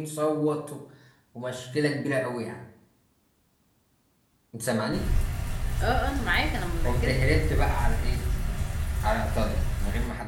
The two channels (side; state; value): both; identical; correlation 1.00